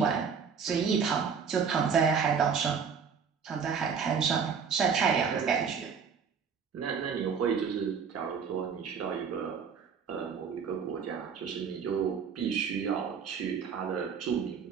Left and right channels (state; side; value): quieter; left; 6.4 dB